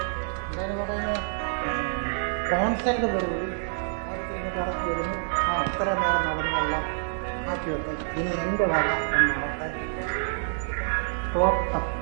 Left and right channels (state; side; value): silent; left; 60 dB below the other